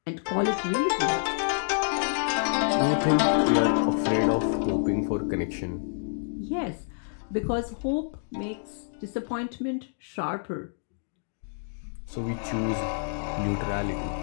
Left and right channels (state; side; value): silent; right; digital silence